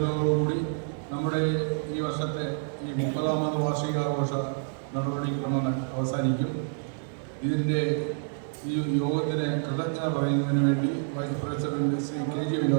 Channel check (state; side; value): silent; left; 59 dB below the other